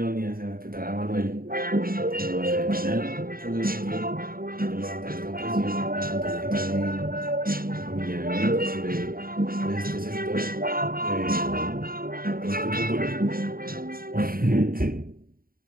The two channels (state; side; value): late; left; 0.42 ms